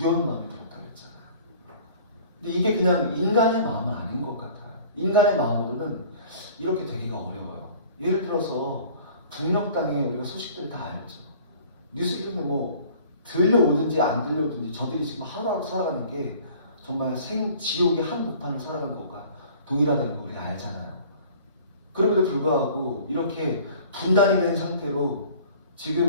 마음이 들었다고 했잖아요. 근데 이게 그냥 인간의 마음은 아닌 것 같아요. 인간의 마음으로는 이렇게 되기가 어려워요. 예를 들어서 북녘 땅에 우리가 소식들 다 알죠. 뉴스를 뭐 들려오든지 안 들려오든지 저들이 지금 하루하루 살아가는 게 정말 지옥의 한복판을 살아가는 것과 동일하다는 걸 우리가 알잖아요. 그럼에도 불구하고 이렇게 분단이 된 상태로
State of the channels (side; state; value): both; inverted; correlation -0.48